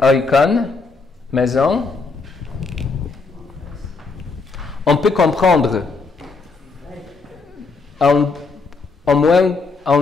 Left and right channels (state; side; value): quieter; right; 4.2 dB